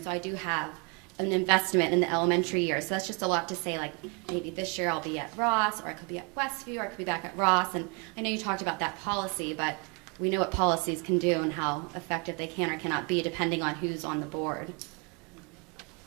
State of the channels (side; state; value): left; quieter; 32.8 dB